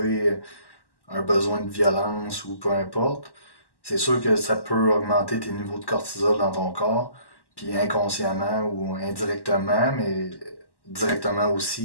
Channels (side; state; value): right; late; 1.1 ms